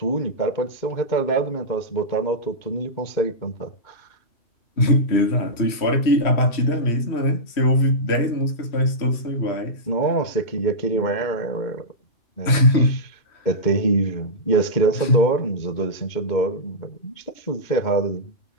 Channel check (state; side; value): late; right; 3.1 ms